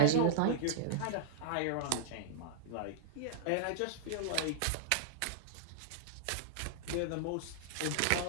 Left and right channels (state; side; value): different; both; correlation -0.02